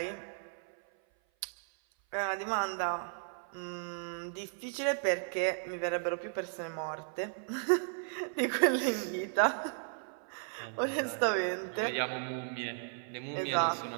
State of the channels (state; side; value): silent; left; 54 dB below the other